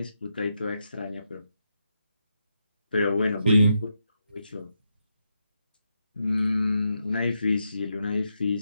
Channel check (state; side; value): inverted; both; correlation -0.84